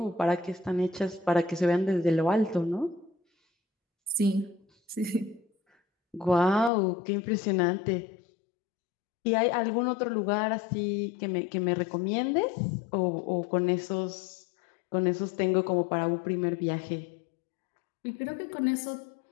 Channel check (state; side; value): drops out; right; at 6.7 s